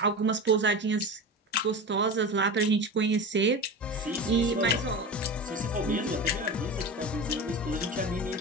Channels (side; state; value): both; normal; correlation 0.27